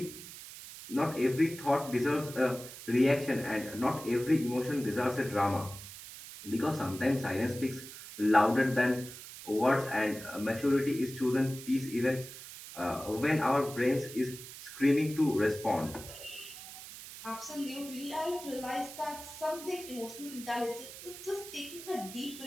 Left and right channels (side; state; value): right; noise; hiss, 13 dB below the sound